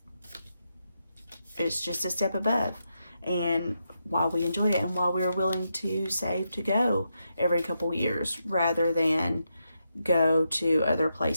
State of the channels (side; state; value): both; inverted; correlation -0.84